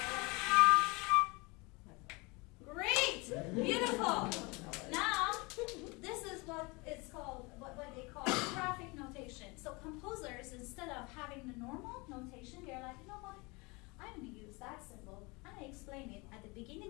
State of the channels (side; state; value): right; quieter; 26.7 dB